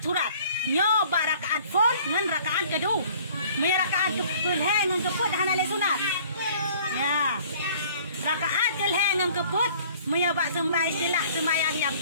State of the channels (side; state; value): both; inverted; correlation -0.54